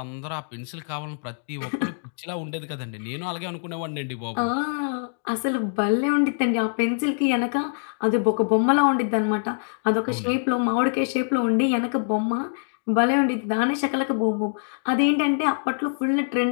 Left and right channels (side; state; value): right; silent; digital silence